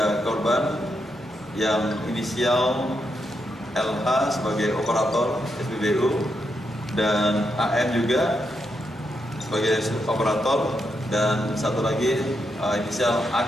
korban yang inisial LH sebagai operator SPBU dan AM juga sebagai operator, dan satu lagi inisial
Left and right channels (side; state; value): both; normal; correlation 0.82